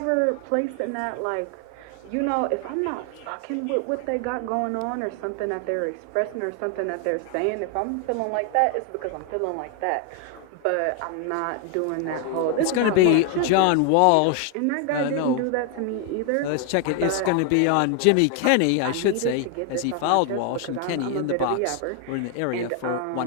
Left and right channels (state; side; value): different; both; correlation 0.01